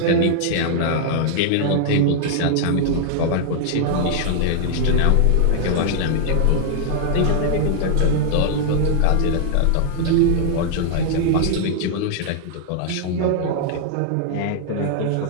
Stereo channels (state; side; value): different; both; correlation -0.01